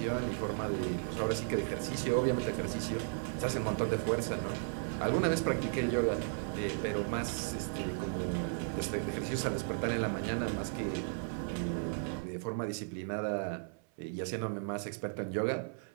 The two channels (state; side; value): silent; left; 54 dB below the other